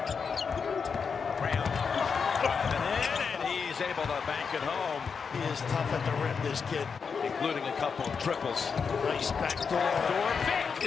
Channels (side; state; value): right; quieter; 5.8 dB